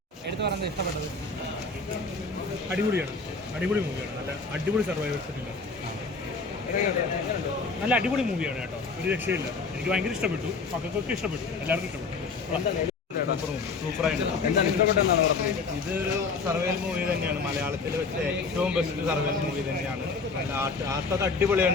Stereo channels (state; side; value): quieter; right; 4.3 dB